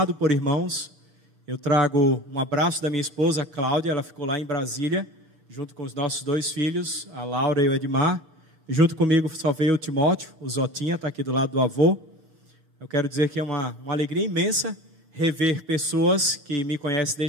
por irmãos. Eu trago um abraço da minha esposa, Cláudia, ela ficou lá em Brasília, junto com os nossos dois filhos, a Laura e o Edmar. E junto comigo só veio o Timóteo, o Zotinha, está aqui do lado do avô. Eu quero dizer que é uma alegria imensa rever pessoas que me conhecem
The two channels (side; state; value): left; late; 6.2 ms